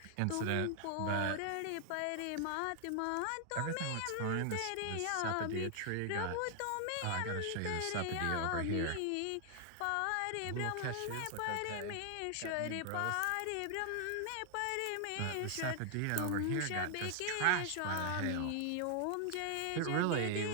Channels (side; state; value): both; different; correlation 0.00